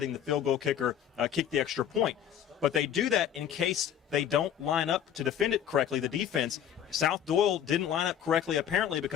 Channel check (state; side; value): quieter; right; 9.7 dB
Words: the field goal kicker kick the extra point. But they do that in case they don't line up to defend it correctly, the defense. South-Doyle didn't line up correctly, apparently,